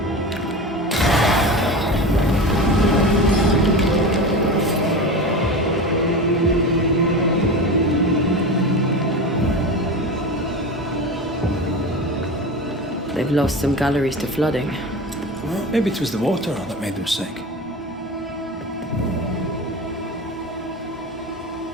They've lost some galleries to flooding. Well, maybe it was the water that made them sick.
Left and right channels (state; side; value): normal; both; correlation 0.28